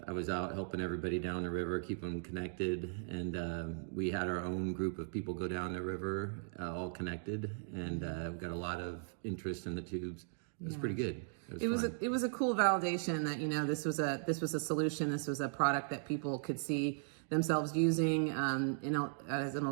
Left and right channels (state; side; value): silent; left; digital silence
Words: I was out helping everybody down the river, keep them connected, and we had our own group of people go down the river, all connected, and we got a lot of interest in the tubes. It was pretty good. It was a cool validation that this was a solution. This was a product that people could see themselves using as an